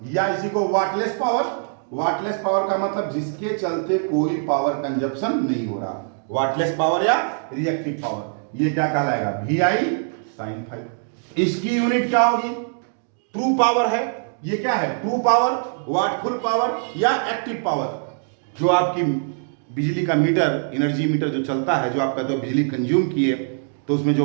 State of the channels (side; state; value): left; silent; digital silence